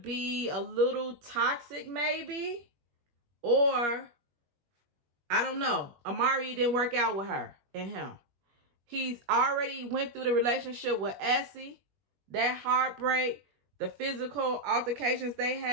a little toxic maybe. Or, I don't know. Amari didn't work out with her and him. He's already went through the relationship with Essie. That heartbreak, the physical altercations they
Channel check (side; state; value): left; late; 21 ms